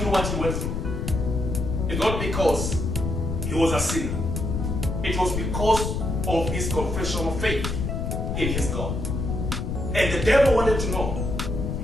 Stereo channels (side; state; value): left; noise; rumble, 2 dB below the sound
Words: what he went through. It's not because he was a sinner. It was because of his confession of faith in his God. And the devil wanted to know,